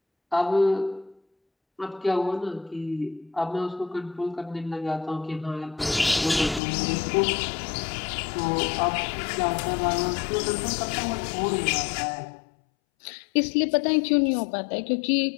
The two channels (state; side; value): drops out; right; at 6.6 s